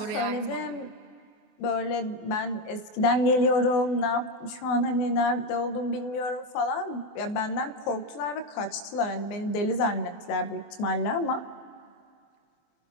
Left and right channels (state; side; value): late; right; 24 ms